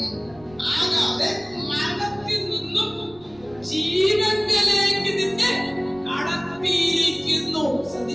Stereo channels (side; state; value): right; noise; rumble, 25 dB below the sound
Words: ആകാതെ മരണത്തിൽ നിന്നും ജീവനിലേക്ക് നിന്നെ കടത്തിയിരിക്കുന്നു.